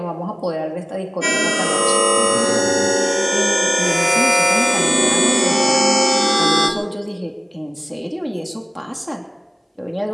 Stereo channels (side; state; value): both; identical; correlation 1.00